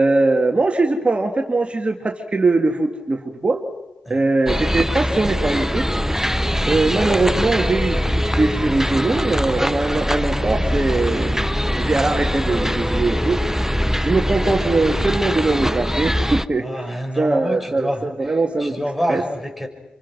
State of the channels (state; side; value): normal; both; correlation 0.94